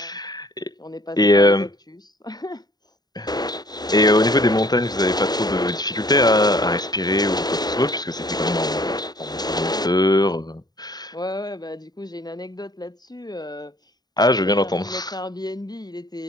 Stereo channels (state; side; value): late; right; 0.20 ms